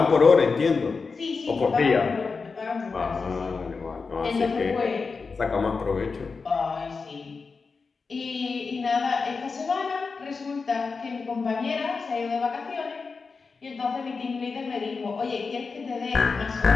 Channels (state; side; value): quieter; right; 4.7 dB